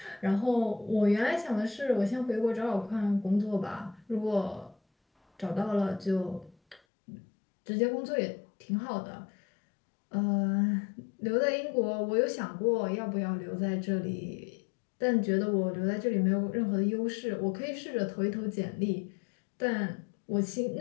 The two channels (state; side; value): drops out; right; at 6.8 s